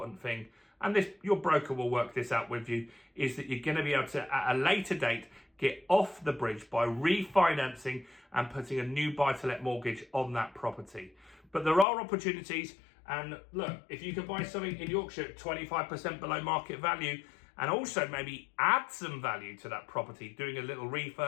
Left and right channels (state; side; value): drops out; right; at 11.9 s